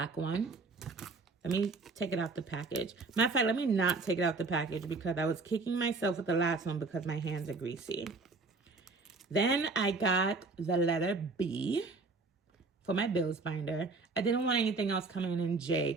one. Let me take it out the package. Matter of fact, let me not take it out the package because I was kicking myself with the last one because my hands are greasy. Then I got the letter B for my bills binder. I didn't want anything else coming in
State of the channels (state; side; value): quieter; left; 3.8 dB